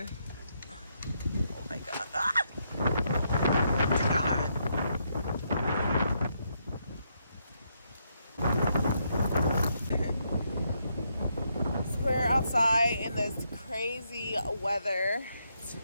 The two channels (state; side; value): inverted; both; correlation -0.77